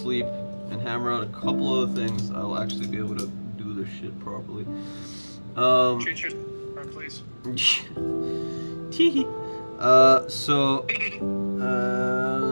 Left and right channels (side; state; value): both; inverted; correlation -1.00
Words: and hammer out a couple other things, I'll actually be able to do this shit properly. Treat yourself, please. Tee. So